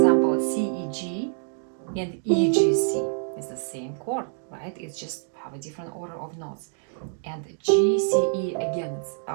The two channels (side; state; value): left; silent; digital silence